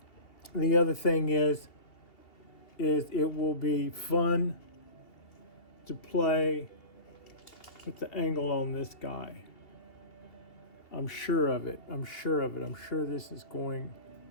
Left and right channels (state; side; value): late; right; 2.8 ms